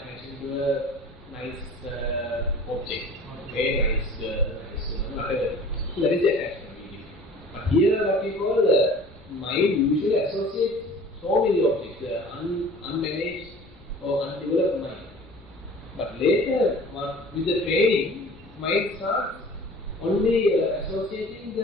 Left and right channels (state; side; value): noise; left; rumble, 26 dB below the sound